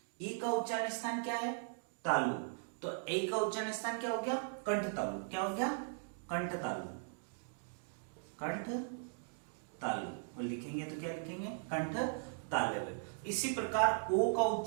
ई का उच्चारण स्थान क्या है, तालु। तो ए का उच्चारण स्थान क्या हो गया, कंठ तालु। क्या हो गया, कंठ तालु, कंठ तालु। और लिखेंगे तो क्या लिखेंगे, कंठ तालव्य। इसी प्रकार ओ का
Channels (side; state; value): left; silent; digital silence